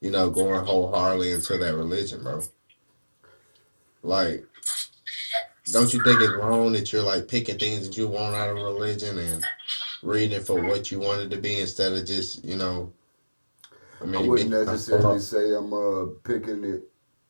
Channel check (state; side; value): inverted; both; correlation -1.00